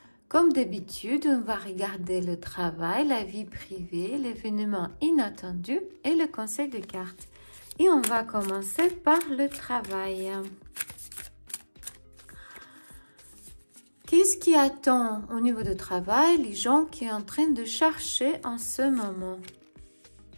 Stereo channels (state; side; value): inverted; both; correlation -1.00